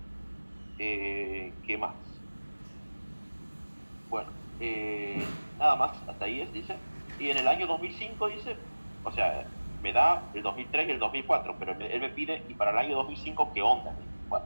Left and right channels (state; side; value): inverted; both; correlation -1.00